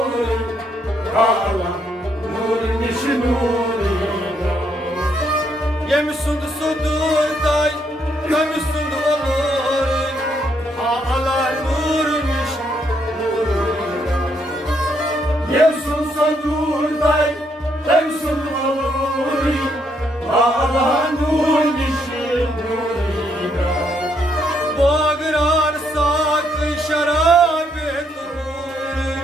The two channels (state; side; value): normal; both; correlation 0.74